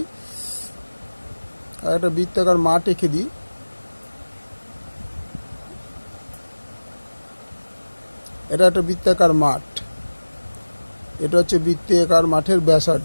একটা বৃত্তাকার মাঠ এঁকে দিই। এটা একটা বৃত্তাকার মাঠ, এটা হচ্ছে বৃত্তাকার মাঠের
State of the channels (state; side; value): inverted; both; correlation -1.00